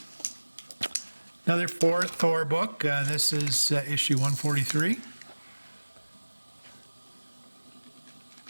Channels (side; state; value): both; inverted; correlation -1.00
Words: Another Thor book. This is issue 143.